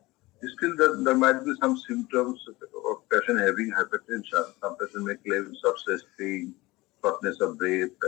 Still, there might be some symptoms of patient having hypertension. Some patient may claim chest pain, shortness of breath,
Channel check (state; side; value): quieter; right; 20.7 dB